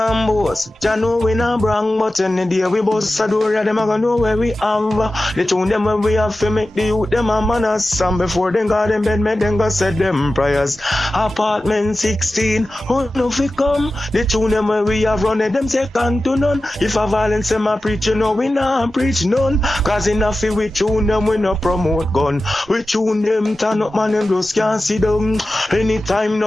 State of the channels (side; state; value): both; normal; correlation 0.94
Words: boss, Jah know we not brang, but in the day we boss a door, them a gonna know where we have. The tune them when we have to make the youth them a manners. And before them got them bed, make them go said them prayers. Apartment 16, who know fi come? The tune them when we have run it, them second to none. If a violence them a preach, you know we not preach none. Cause enough fi we tune them, we no promote gun. We tune them, turn up man, them just can't see them. Anytime